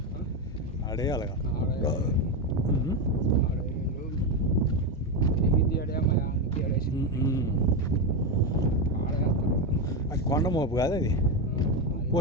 ఆడేయాలిగా అది కొండ మోపు కాదు అది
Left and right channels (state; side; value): normal; both; correlation 0.11